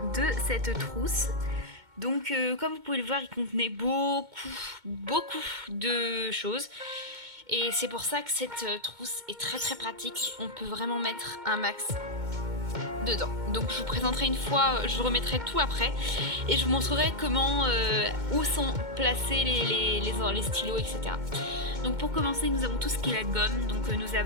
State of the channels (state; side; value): late; left; 2.2 ms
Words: de cette trousse. Donc comme vous pouvez le voir, il contenait beaucoup de choses. Et c'est pour ça que cette trousse est très pratique. On peut vraiment mettre un max dedans. Donc je vous présenterai une fois, je vous remettrai tout après. Et je vous montrerai comment, où sont placés les stylos, etc. Donc pour commencer, nous avons tout ce qui est la gomme. Donc nous